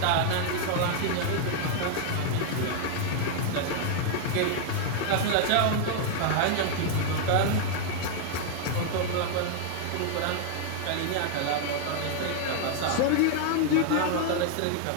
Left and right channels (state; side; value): different; both; correlation 0.00